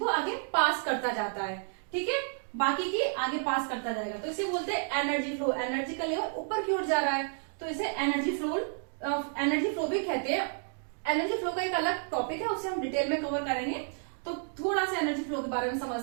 आगे पास करता जाता है। ठीक है, बाकी की आगे पास करता जाएगा, तो इसे बोलते हैं एनर्जी फ्लो। एनर्जी का लेवल ऊपर की ओर जा रहा है, तो इसे एनर्जी फ्लो भी कहते हैं। एनर्जी फ्लो का एक अलग टॉपिक है, उसे हम डिटेल में कवर करेंगे। तो थोड़ा सा एनर्जी फ्लो के बारे में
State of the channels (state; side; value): silent; left; 57 dB below the other